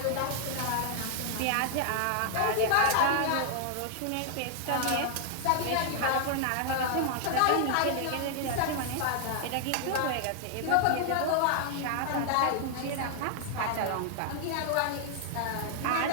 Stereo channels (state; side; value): different; both; correlation 0.00